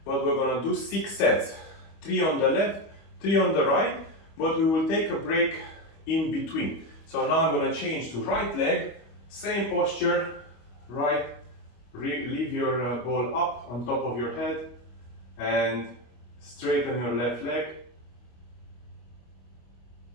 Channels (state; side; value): late; right; 25 ms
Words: but we're going to do 6 sets. 3 on the left, 3 on the right, but we will take a break in between. So now I'm going to change to right leg, same posture, right, leave your ball up on top of your head and straighten your left leg.